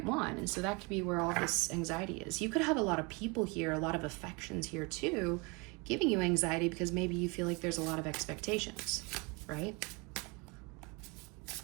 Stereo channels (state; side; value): quieter; left; 28.7 dB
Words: one. And so that could be where all this anxiety is. You could have a lot of people here, a lot of affections here too, giving you anxiety because maybe you feel like there's a lot of expectations, right?